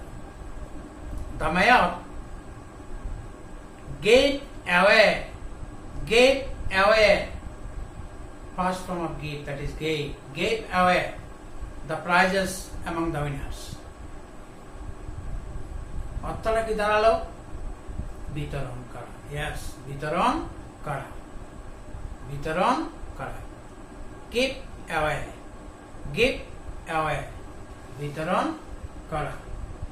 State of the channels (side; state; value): both; identical; correlation 1.00